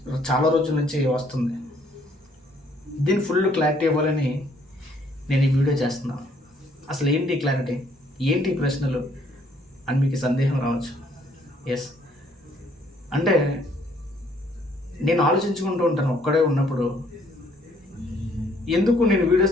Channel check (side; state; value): both; normal; correlation 0.64